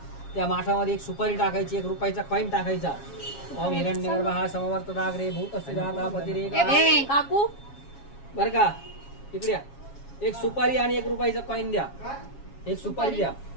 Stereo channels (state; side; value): late; right; 7.3 ms